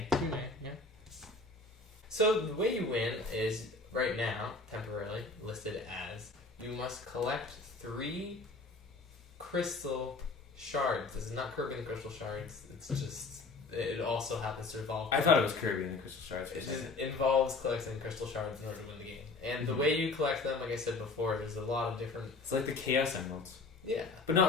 Yeah. So the way you win is right now temporarily listed as you must collect 3 crystal shards. This is not Kirby and the Crystal Shards. It's just it also happens to involve. I thought it was Kirby and the Crystal Shards. It just involves collecting crystal shards in order to win the game. And the way you collect them, like I said before, there's a lot of different. It's like the Chaos Emeralds. Yeah. But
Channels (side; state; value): right; quieter; 3.7 dB